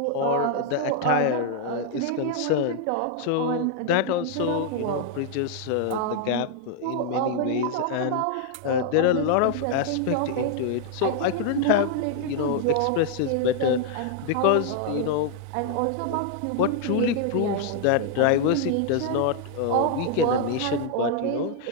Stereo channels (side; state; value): both; different; correlation 0.00